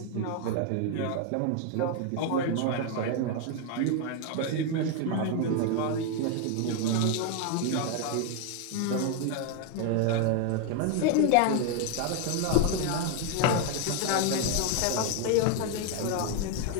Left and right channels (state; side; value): different; both; correlation 0.01